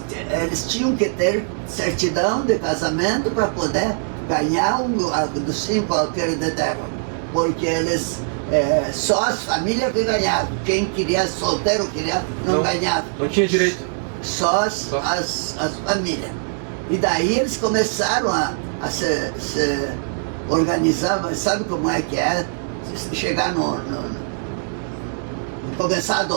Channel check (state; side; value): silent; left; digital silence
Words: eles tinham que ter certidão de casamento para poder ganhar dos 5 alqueires de terra. Porque eles, só as famílias que ganhavam. Quem queria solteiro não ganhava. Não tinha direito. Só as famílias. E daí eles começaram a se organizar, mas sabe como é que é? Chegar começar